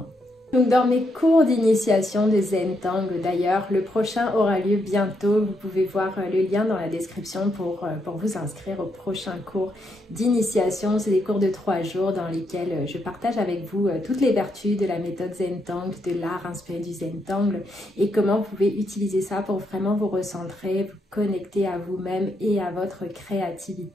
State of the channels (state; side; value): normal; both; correlation 0.79